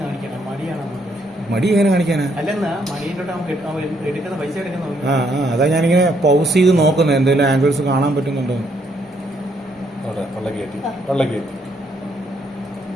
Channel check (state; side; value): normal; both; correlation 0.72